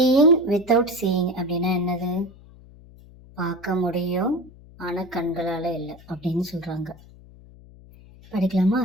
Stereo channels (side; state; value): left; noise; hum, 22 dB below the sound